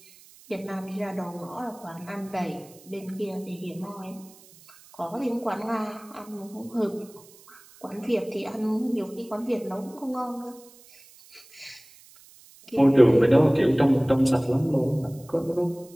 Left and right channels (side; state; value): right; noise; hiss, 24 dB below the sound